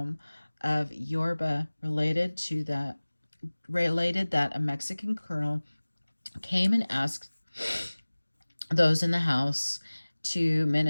of Yorba, related that a Mexican colonel came and asked those in the house to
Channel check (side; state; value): both; inverted; correlation -1.00